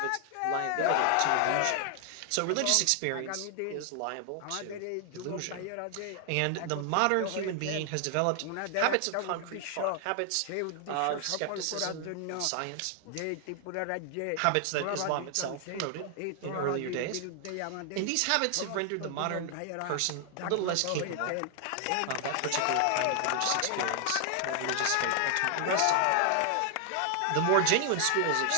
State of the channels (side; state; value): both; different; correlation 0.00